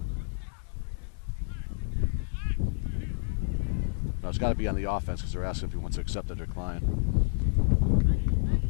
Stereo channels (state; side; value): silent; right; digital silence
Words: No, it's got to be on the offense because they're asking if he wants to accept the decline.